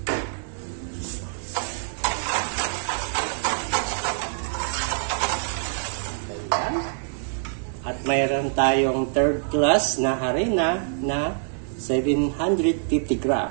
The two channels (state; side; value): silent; left; digital silence